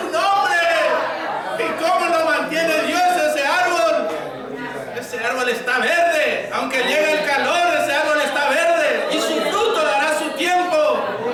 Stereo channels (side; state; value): both; identical; correlation 1.00